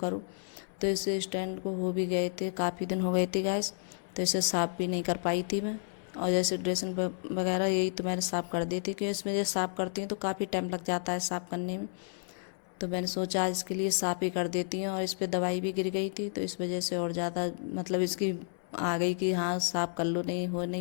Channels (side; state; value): right; silent; 57 dB below the other